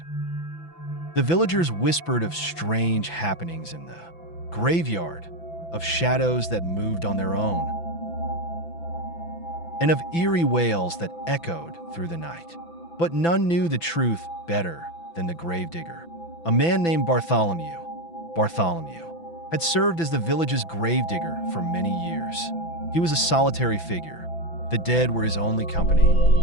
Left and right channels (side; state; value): right; late; 6.0 ms